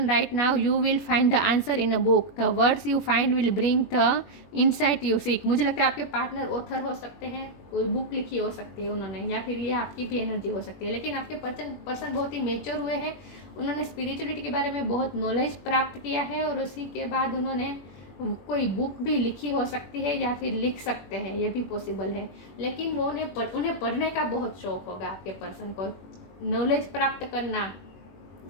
right now you will find the answer in a book, the words you find will bring the insight you seek. मुझे लगता है आपके पार्टनर ऑथर हो सकते हैं, कोई बुक लिखी हो सकती है उन्होंने, या फिर ये आपकी भी एनर्जी हो सकती है। लेकिन आपके पर्सन बहुत ही मेच्योर हुए हैं, उन्होंने स्पिरिचुअलिटी के बारे में बहुत नॉलेज प्राप्त किया है और उसी के बाद उन्होंने कोई बुक भी लिखी हो सकती है या फिर लिख सकते हैं, ये भी पॉसिबल है। लेकिन वो उन्हें पढ़ने का बहुत शौक होगा आपके पर्सन को, नॉलेज प्राप्त करना,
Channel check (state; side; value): late; right; 21 ms